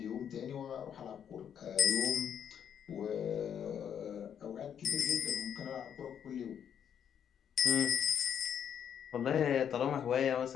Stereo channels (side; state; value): right; quieter; 8.6 dB